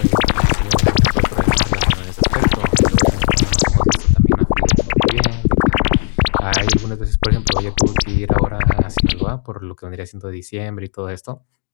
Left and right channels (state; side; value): silent; right; digital silence